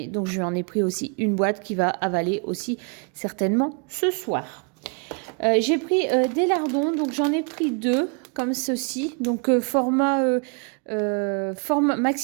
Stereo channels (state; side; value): quieter; left; 37.3 dB